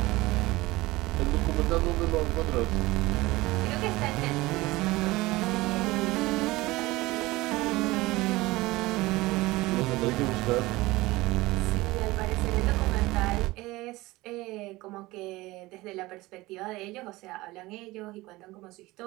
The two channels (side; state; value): left; quieter; 20.0 dB